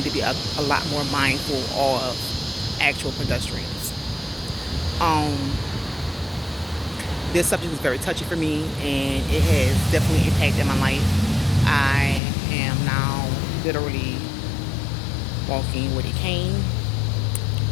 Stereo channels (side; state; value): right; drops out; at 12.2 s